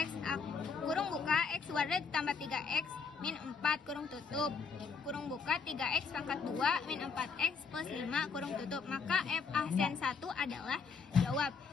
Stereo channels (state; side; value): quieter; right; 5.4 dB